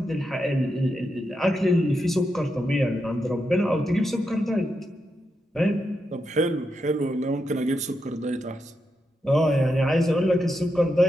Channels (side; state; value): both; normal; correlation 0.85